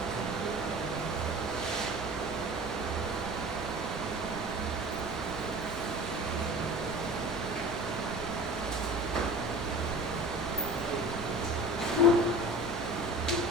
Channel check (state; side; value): normal; both; correlation 0.39